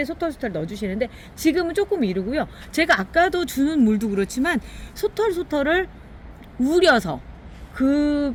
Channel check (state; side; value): identical; both; correlation 1.00